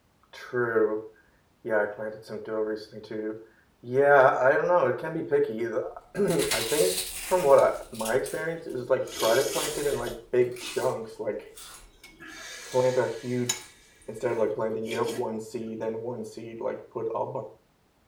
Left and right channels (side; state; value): both; identical; correlation 1.00